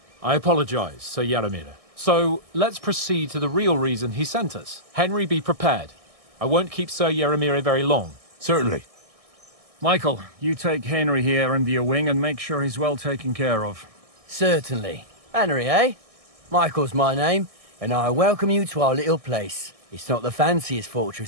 I apologize, Sir Yaramir. So, let's proceed to the real reason he sent us. Henry, be prepared. I won't keep Sir Yaramir very long. Certainly. Michael, you take Henry here under your wing and make sure he's well taken care of. Certainly. Henry, eh? Michael's my name, and I welcome you to our little place. It's not the fanciest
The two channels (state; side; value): late; left; 1.6 ms